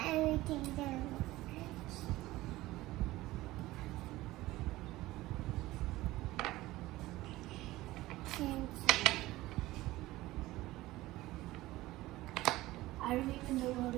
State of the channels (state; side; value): quieter; left; 17.8 dB